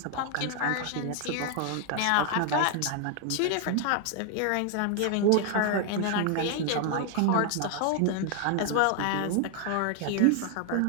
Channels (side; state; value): both; different; correlation 0.00